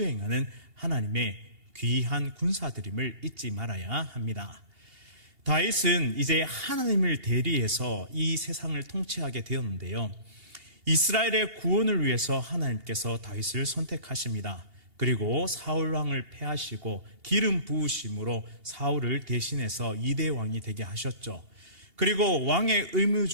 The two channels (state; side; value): late; left; 2.8 ms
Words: 하나님의 귀한 군사들임을 잊지 말아야 합니다. 다윗은 이제 하나님을 대리해서 이 세상을 통치하게 되었는데요. 이스라엘의 구원을 위해서 하나님께서 다윗을 선택하십니다. 그리고 사울 왕을 패하시고 기름 부으심으로 사울을 대신해서 2대 왕이 되게 하셨죠. 그리고 왕의 의무